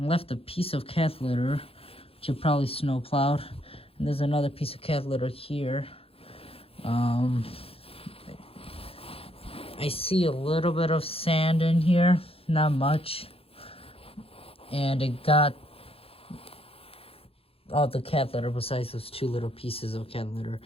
left a piece of cat litter, which you probably snowplowed, and there's another piece of cat litter here. I see a little bit of sand in here, not much, and it got all the cat litter besides those two little pieces of cat litter.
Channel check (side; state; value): right; late; 0.27 ms